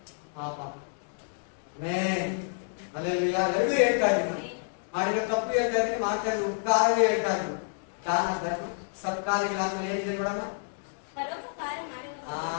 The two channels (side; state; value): right; silent; digital silence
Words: ಪಾಪ. ಅಲ್ಲೆಲ್ಲ ಎರಡೂ ಹೇಳ್ತಾ ಇದ್ದೀನಿ, ನಾನು ಮಾಡಿರೋ ತಪ್ಪು ಹೇಳ್ತಾ ಇದ್ದೀನಿ, ಮಾಡ್ತಾ ಇದ್ದೀನಿ ಉಪಕಾರವೇ ಹೇಳ್ತಾ ಇದ್ದೀನಿ. ದಾನ ಧರ್ಮ ಸತ್ಕಾರ್ಯಗಳಾದ್ಮೇಲೆ ಏನಿದೆ ನೋಡೋಣ. ಪರೋಪಕಾರ ಮಾಡುವವರು.